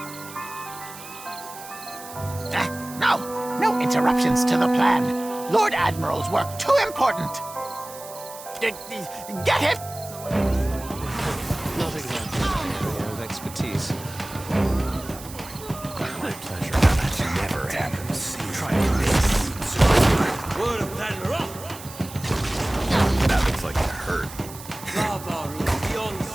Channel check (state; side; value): noise; right; hiss, 15 dB below the sound